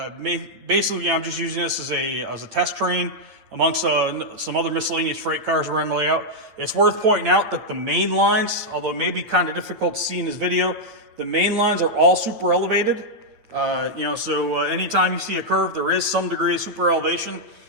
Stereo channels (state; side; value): late; left; 8.9 ms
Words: Basically, I'm just using this as a test train amongst some other miscellaneous freight cars around the layout. It's worth pointing out that the main lines, although it may be kind of difficult to see in this video, the main lines are all super elevated. So anytime you see a curve, there is some degree of super elevation.